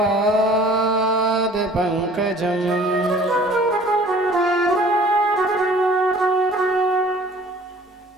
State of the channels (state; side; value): normal; both; correlation 0.50